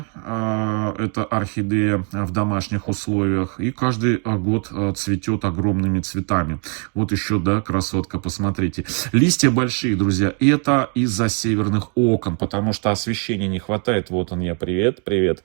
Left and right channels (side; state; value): left; quieter; 38.3 dB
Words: Это орхидея в домашних условиях. И каждый год цветет огромными цветами. Вот еще, да, красотка, посмотрите. Листья большие, друзья. Это из-за северных окон, потому что освещения не хватает. Вот он я, привет, привет.